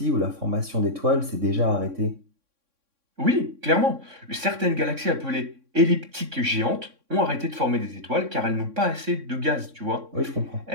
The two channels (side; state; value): left; late; 3.6 ms